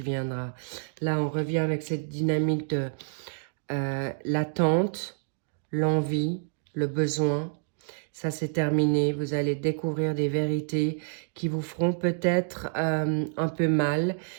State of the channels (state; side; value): silent; left; digital silence